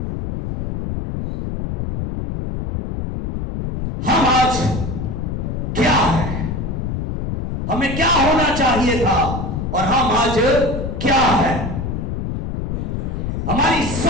हम आज क्या है, हमें क्या होना चाहिए था, और हम आज क्या है? हमारी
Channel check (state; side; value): noise; left; rumble, 3 dB below the sound